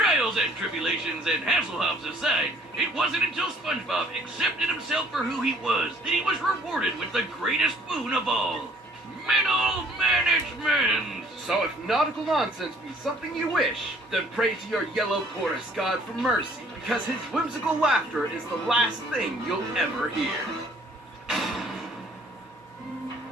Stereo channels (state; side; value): normal; both; correlation 0.59